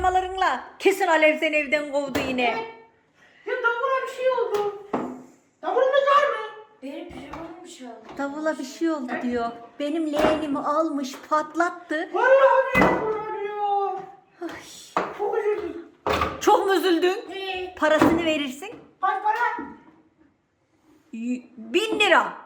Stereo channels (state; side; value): identical; both; correlation 1.00